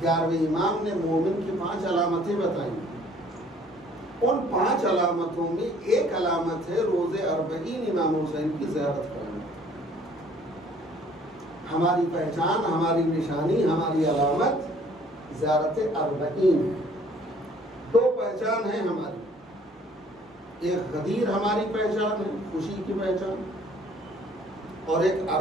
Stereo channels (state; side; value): normal; both; correlation 0.57